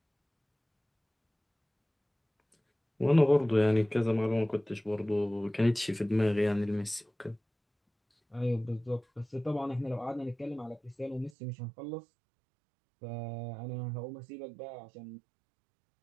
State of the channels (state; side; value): drops out; left; at 11.3 s